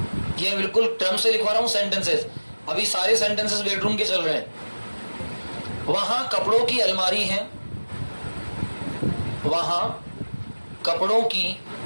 ये बिल्कुल टर्म से लिखवा रहा हूं सेंटेंसेस। अभी सारे सेंटेंसेस बेडरूम के चल रहे हैं। वहां कपड़ों की अलमारी है। वहां कपड़ों की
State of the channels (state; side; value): inverted; both; correlation -1.00